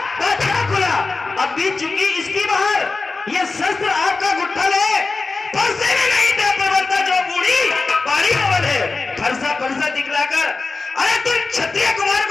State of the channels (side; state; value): right; quieter; 3.9 dB